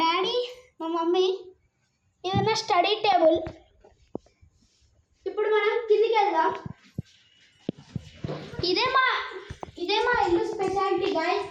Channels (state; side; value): identical; both; correlation 1.00